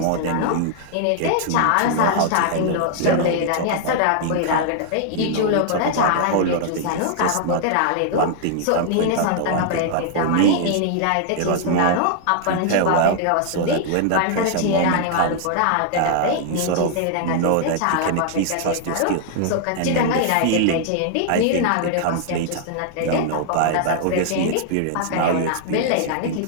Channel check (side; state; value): both; different; correlation -0.01